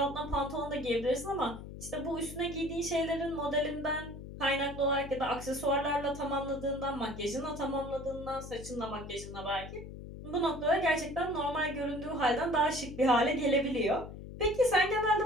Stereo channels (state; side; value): noise; left; hum, 12 dB below the sound